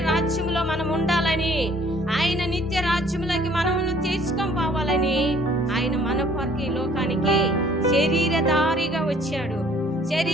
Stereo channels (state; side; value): normal; both; correlation 0.58